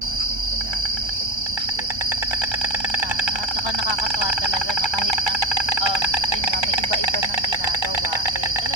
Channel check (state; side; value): late; left; 1.3 ms